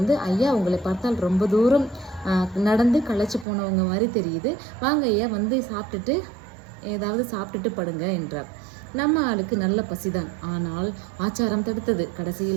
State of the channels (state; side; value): drops out; left; at 3.5 s